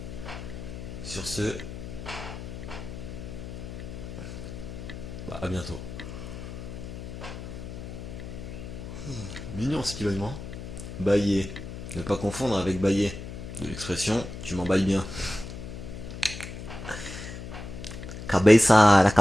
sur ce, bah à bientôt. Mignon ce qu'il a, hein. Bailler. Ne pas confondre avec bailler. De l'expression tu m'emballes bien. Cabeza, la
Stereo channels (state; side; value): noise; left; hum, 9 dB below the sound